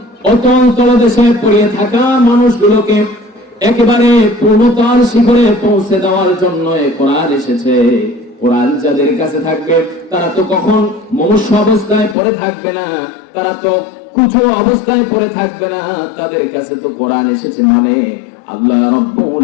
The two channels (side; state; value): right; drops out; at 12.2 s